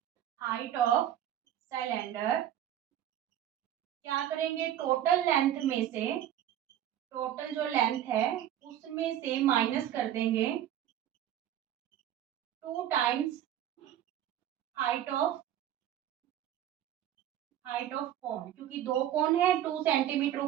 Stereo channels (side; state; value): left; quieter; 11.4 dB